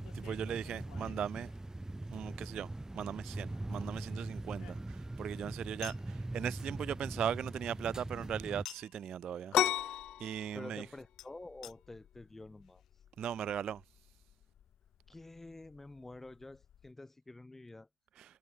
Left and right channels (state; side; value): normal; both; correlation 0.66